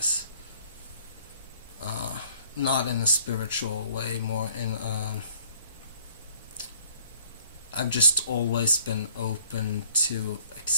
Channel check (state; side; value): inverted; both; correlation -0.60